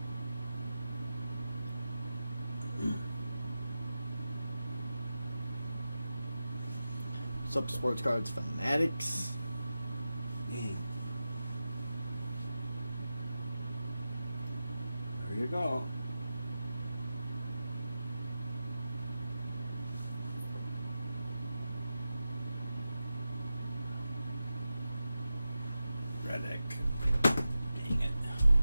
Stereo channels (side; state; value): both; inverted; correlation -0.92